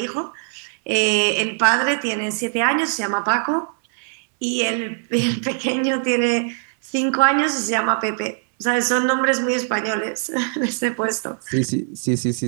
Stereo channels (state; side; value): silent; left; 64 dB below the other